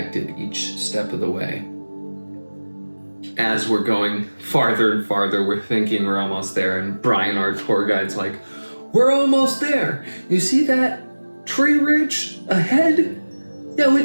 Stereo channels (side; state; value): both; inverted; correlation -1.00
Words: each step of the way. As we're going farther and farther, we're thinking we're almost there, and Brian, our tour guide's like, "We're almost there. You see that tree ridge ahead? Yeah, we